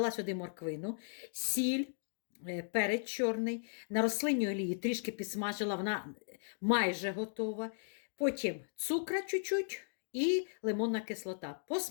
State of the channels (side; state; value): right; silent; digital silence